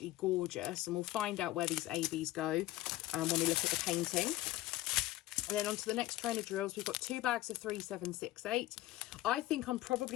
gorgeous. And we'll find out where these ABs go when we look at the painting. And then on to the next train of drills, we've got 2 bags of 3768. I think I'm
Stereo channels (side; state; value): right; quieter; 16.3 dB